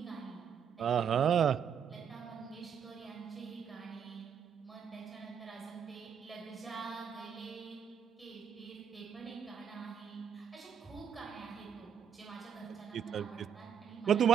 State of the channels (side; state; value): left; quieter; 7.8 dB